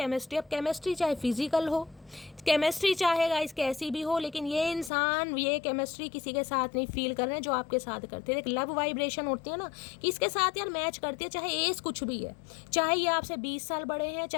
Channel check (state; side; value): drops out; right; at 4.9 s